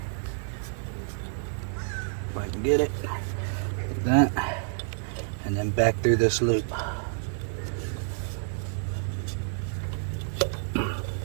if I can get it, like that, and then back through this loop.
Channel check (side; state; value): left; silent; 59 dB below the other